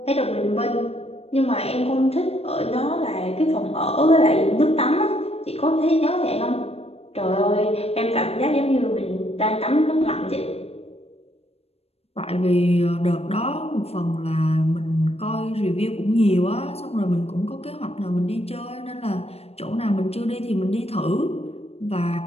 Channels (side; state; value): right; late; 0.29 ms